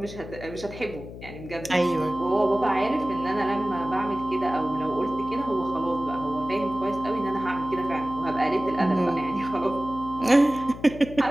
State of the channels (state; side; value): noise; left; hum, 13 dB below the sound